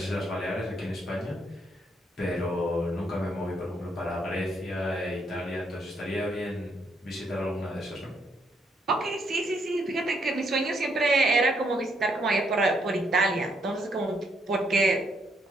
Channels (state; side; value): normal; both; correlation 0.73